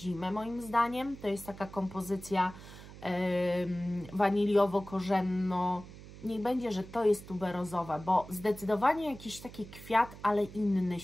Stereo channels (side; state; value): right; noise; hum, 16 dB below the sound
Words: moim zdaniem. To jest taka kompozycja waniliowo-korzenno. Niech będzie, że to jest tuberozowa, bo zdecydowanie jakiś taki kwiat, ale inny